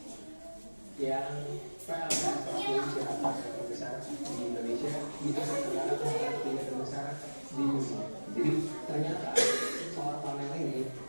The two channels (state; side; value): inverted; both; correlation -1.00